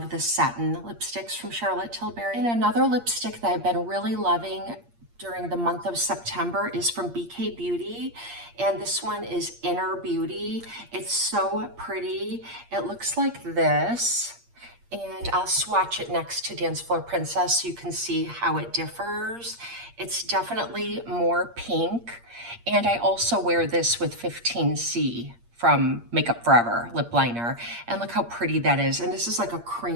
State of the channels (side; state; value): left; late; 8.6 ms